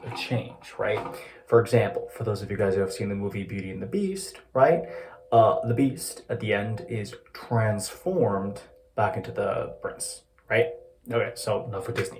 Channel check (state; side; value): identical; both; correlation 1.00